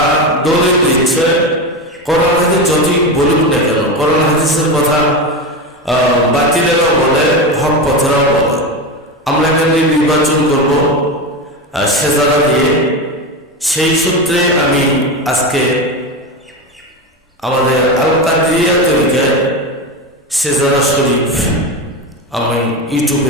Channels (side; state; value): both; normal; correlation 0.19